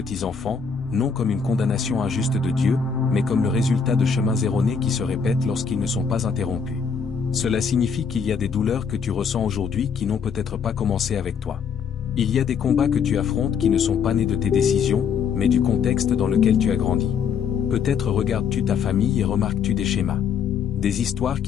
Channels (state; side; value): quieter; right; 6.4 dB